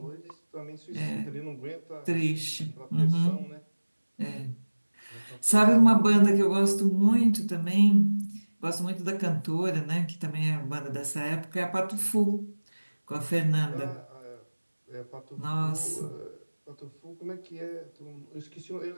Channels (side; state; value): both; inverted; correlation -1.00